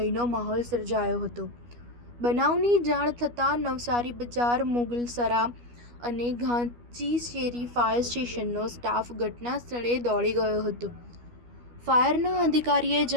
માહોલ સર્જાયો હતો. બનાવની જાણ થતાં નવસારી બજાર, મુગલસરા અને ઘાંચીશેરી ફાયર સ્ટેશનનો સ્ટાફ ઘટના સ્થળે દોડી ગયો હતો. ફાયરના અધિકારીએ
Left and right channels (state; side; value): late; left; 12 ms